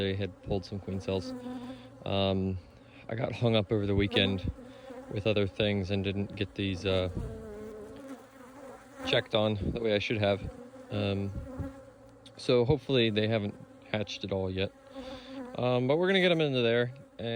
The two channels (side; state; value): both; identical; correlation 1.00